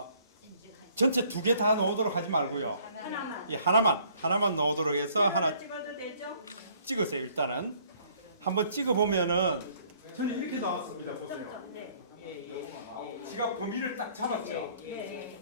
전체 두 개 다 넣도록 하지 말고요. 예, 하나만 넣도록 해서 하나 찍으세요. 일단은 한번 찍어 보면은 저는 이렇게 나왔습니다. 보세요. 지가 범위를 딱 잡았죠.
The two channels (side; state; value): both; inverted; correlation -0.61